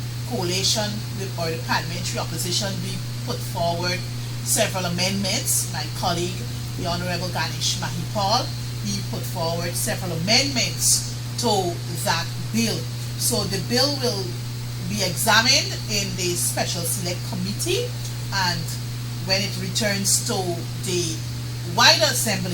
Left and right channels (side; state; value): both; identical; correlation 1.00